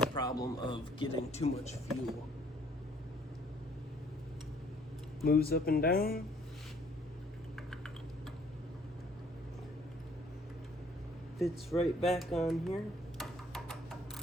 problem of getting too much fuel. Moves up and down. Fits right back on here.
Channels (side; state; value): both; normal; correlation 0.60